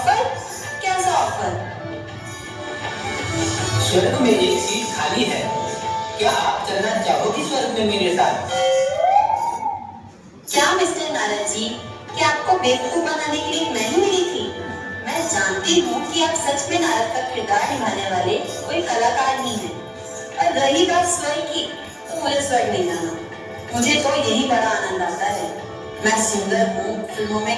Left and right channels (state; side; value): identical; both; correlation 1.00